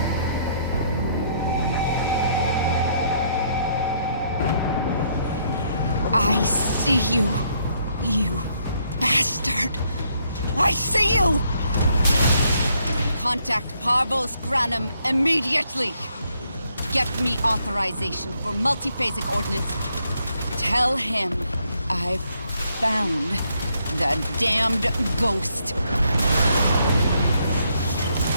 I see you, you bastard. I see you! Contact Parvos Granum immediately. Get me authorization for multiphasic ordnance. Tell him I've found the damned ghost.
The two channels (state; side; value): inverted; both; correlation -0.72